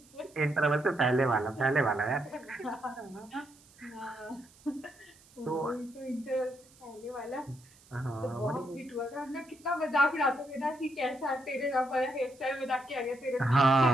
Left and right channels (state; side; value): noise; right; hiss, 26 dB below the sound